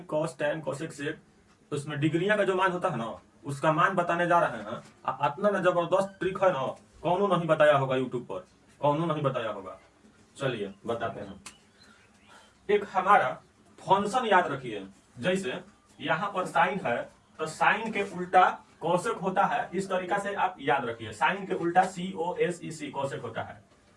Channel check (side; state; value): both; identical; correlation 1.00